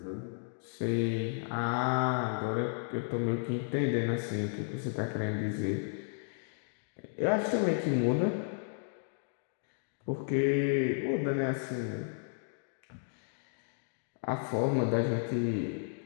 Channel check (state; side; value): silent; right; digital silence